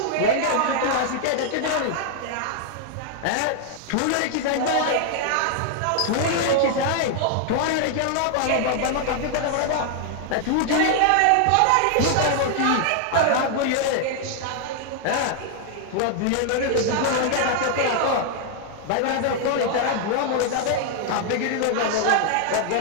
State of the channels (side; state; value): both; different; correlation 0.00